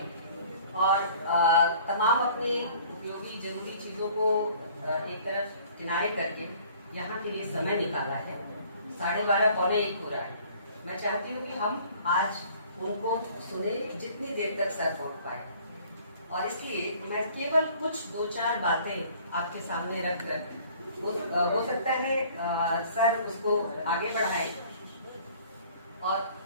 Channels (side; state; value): both; inverted; correlation -0.53